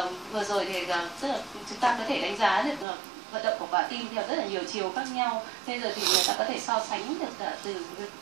vừa rồi thì tức là chúng ta có thể đánh giá được vận động của quả tim theo rất là nhiều chiều khác nhau. Bây giờ thì người ta có thể so sánh được cả từ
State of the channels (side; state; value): left; drops out; at 2.9 s